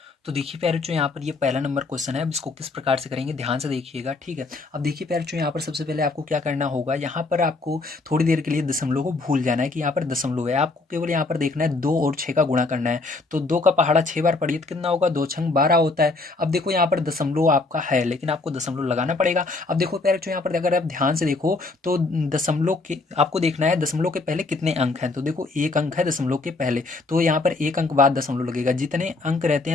तो देखिए प्यारे बच्चों यहाँ पर ये पहला नंबर क्वेश्चन है, अब इसको किस प्रकार से करेंगे ध्यान से देखिएगा। ठीक है, अब देखिए प्यारे बच्चों यहाँ पर सबसे पहले आपको क्या करना होगा, यहाँ पर आपको थोड़ी देर के लिए दशमलव को भूल जाना है कि यहाँ पर दशमलव है। आपको केवल यहाँ पर देखना है 2 और 6 का गुणा करना है। तो 2 का पहाड़ा 6 बार पढ़िए तो कितना होगा, 2 छंग 12 होता है। अब देखो यहाँ पर दशमलव आपका है लेकिन आपको दशमलव लगाना पड़ेगा। अब देखो प्यारे बच्चों यहाँ पर अगर आप ध्यान से देखो तो दशमलव के आपको देखना है दशमलव के पहले कितने अंक हैं। तो देखो एक अंक है दशमलव के पहले, तो यहाँ पर एक अंक बाद दशमलव लगेगा। जितने अंक रहते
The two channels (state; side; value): quieter; right; 3.5 dB